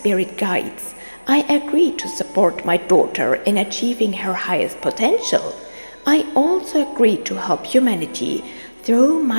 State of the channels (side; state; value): both; inverted; correlation -1.00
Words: guides, I agreed to support my daughter in achieving her highest potential. I also agreed to help humanity through